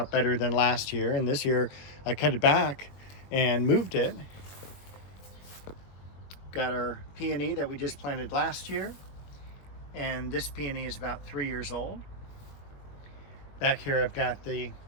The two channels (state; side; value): late; right; 21 ms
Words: better than last year. And this year I cut it back and moved it. Got our peony that we just planted last year. And this peony is about 3 years old. Back here I've got the